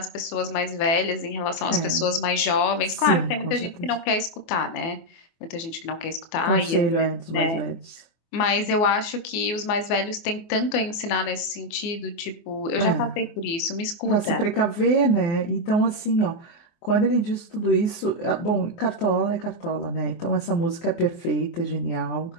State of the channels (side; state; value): right; late; 24 ms